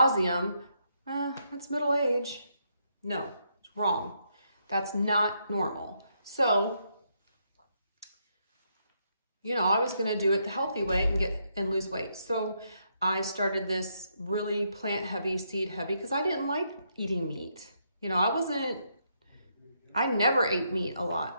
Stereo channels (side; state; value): both; inverted; correlation -0.77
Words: that's middle age. No. Wrong. That's not normal. So, I was going to do it the healthy way and lose weight. So I started this really plant heavy, seed heavy, because I didn't like eating meat. I never ate meat a